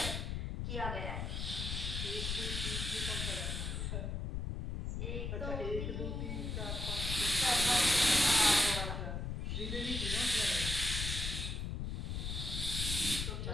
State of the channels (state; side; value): noise; left; rumble, 3 dB below the sound